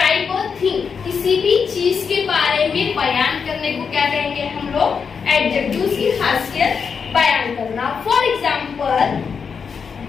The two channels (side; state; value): right; quieter; 6.1 dB